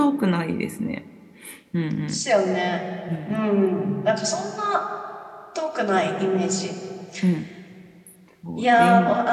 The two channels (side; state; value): both; identical; correlation 1.00